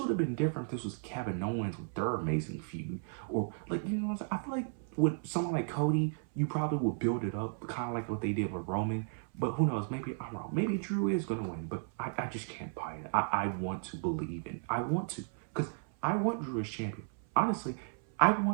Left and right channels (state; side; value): silent; left; 55 dB below the other